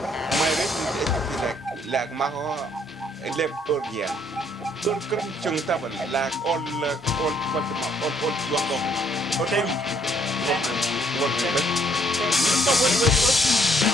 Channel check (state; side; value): normal; both; correlation 0.67